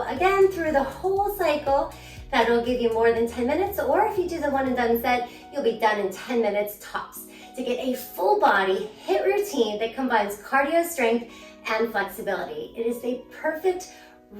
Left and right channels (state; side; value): identical; both; correlation 1.00